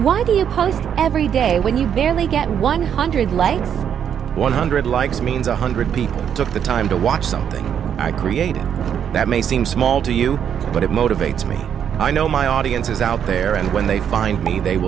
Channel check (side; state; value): left; quieter; 8.6 dB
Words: do you post every day when you barely get 100 likes? 100 likes means 100 people took the time to watch something I created. That may seem small to you, but it motivates me. I know my audience is out there, and when they find me, they